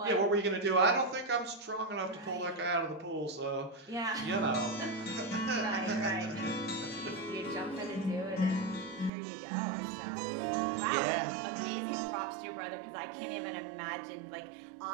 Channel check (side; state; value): left; drops out; at 9.1 s